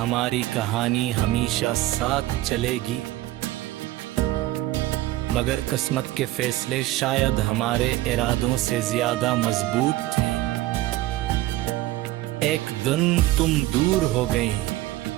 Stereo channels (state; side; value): quieter; left; 16.4 dB